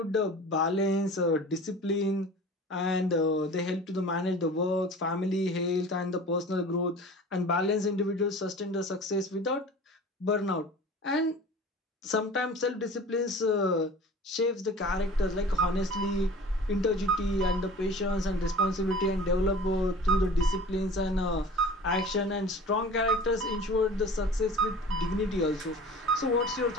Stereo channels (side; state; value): both; normal; correlation 0.41